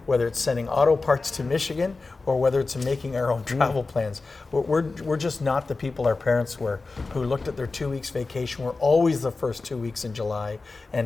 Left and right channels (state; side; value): quieter; right; 3.8 dB